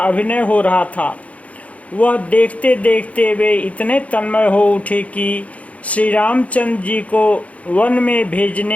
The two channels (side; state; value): right; late; 0.066 ms